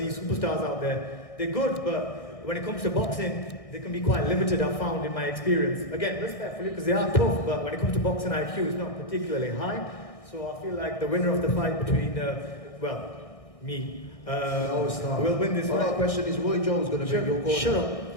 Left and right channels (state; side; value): late; right; 1.6 ms